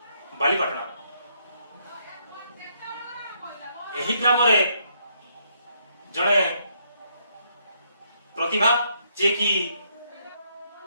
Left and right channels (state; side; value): inverted; both; correlation -0.73